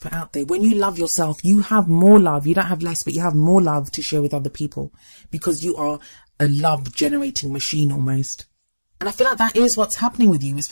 out there. When you love yourself, you have more love. You don't have less, but you have more love to share with other people because you are a love generating machine almost. And I feel like that is what's happening with you,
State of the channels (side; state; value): both; inverted; correlation -1.00